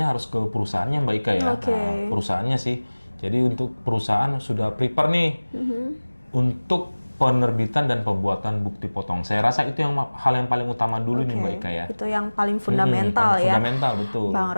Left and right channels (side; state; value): both; inverted; correlation -1.00